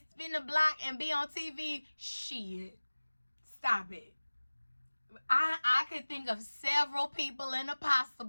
spin the block and be on TV? Shit. Stop it. I could think of several people in the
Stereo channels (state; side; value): inverted; both; correlation -1.00